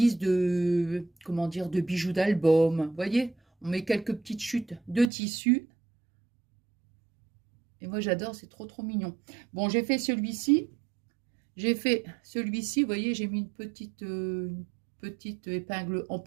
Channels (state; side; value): drops out; left; at 5.1 s